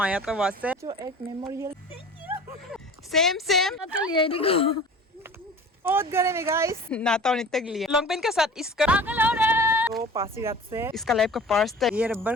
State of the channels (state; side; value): normal; both; correlation 0.41